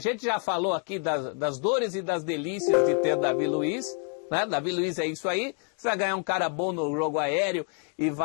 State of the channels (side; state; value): right; quieter; 39.0 dB